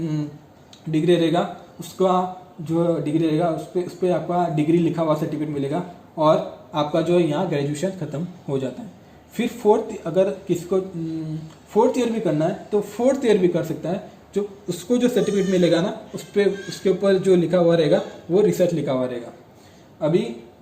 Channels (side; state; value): both; identical; correlation 1.00